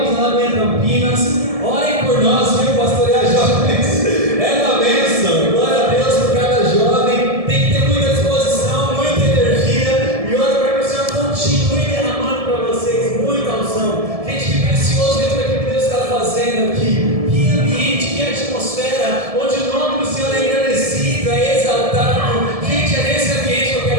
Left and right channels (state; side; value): late; left; 1.7 ms